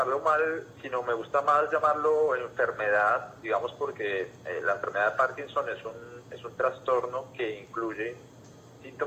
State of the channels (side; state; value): both; identical; correlation 1.00